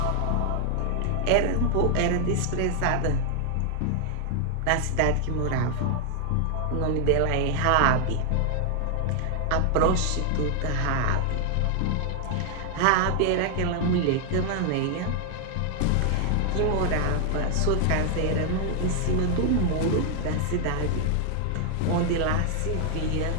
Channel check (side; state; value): both; different; correlation 0.00